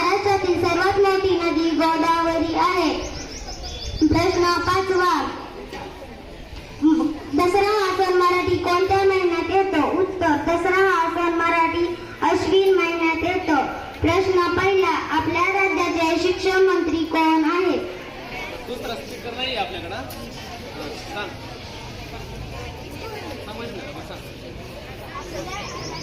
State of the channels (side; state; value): both; identical; correlation 1.00